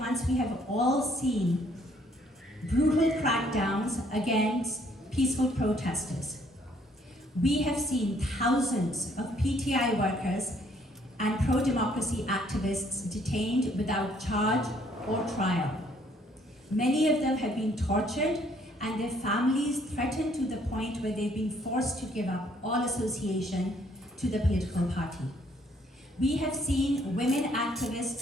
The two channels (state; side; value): normal; both; correlation 0.65